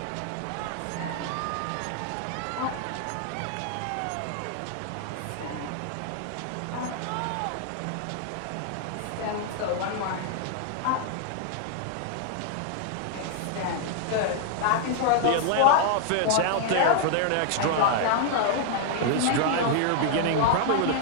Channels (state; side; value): different; both; correlation 0.00